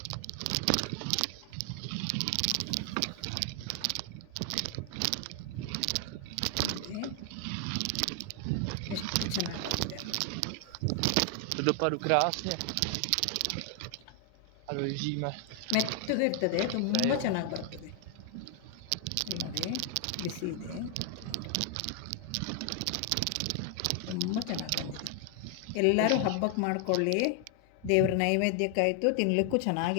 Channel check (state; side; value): different; both; correlation 0.00